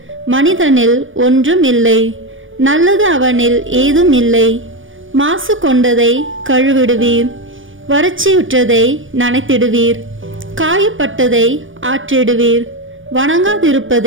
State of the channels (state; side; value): late; left; 0.57 ms